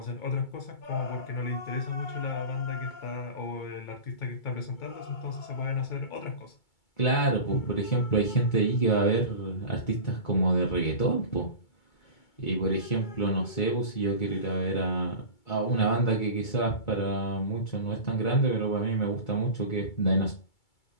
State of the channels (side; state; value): right; late; 2.3 ms